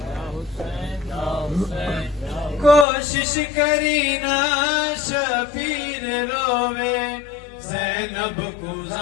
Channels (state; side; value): drops out; right; at 2.9 s